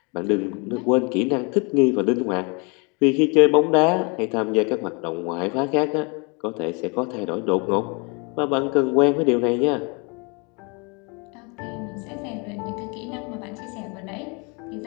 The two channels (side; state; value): right; quieter; 31.9 dB